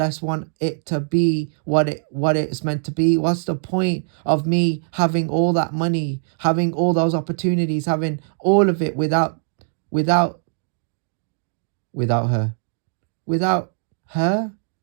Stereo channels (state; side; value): silent; left; digital silence